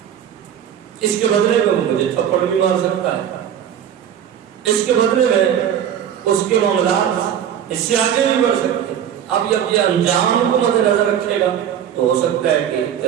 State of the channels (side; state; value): left; quieter; 9.4 dB